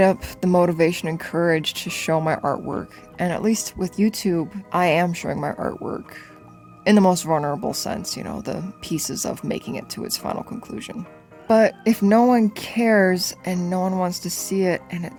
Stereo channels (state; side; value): identical; both; correlation 1.00